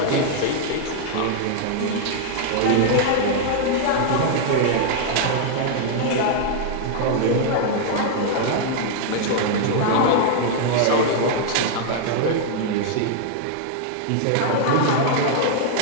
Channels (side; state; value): both; different; correlation -0.01